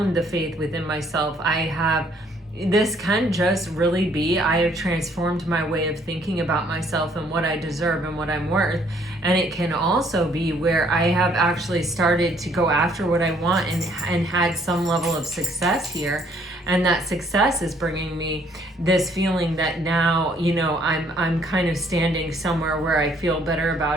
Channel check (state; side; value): normal; both; correlation 0.64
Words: the faith within myself. This can just really be, I have transformed my way of thinking about myself and what I deserve and what I'm worth. And it can also be where I have actually started to go after what I want and had some level of success here. And that success is bringing me this feeling that now, I'm kind of standing somewhere where I feel better